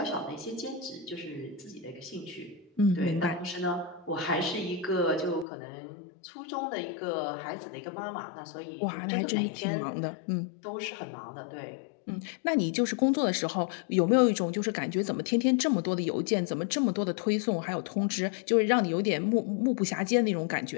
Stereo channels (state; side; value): drops out; right; at 5.5 s